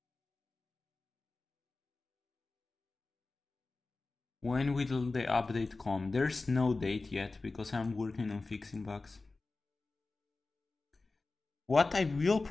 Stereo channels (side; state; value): right; quieter; 3.6 dB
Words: When will the update come? There's no date yet because I'm working on fixing bugs. What I will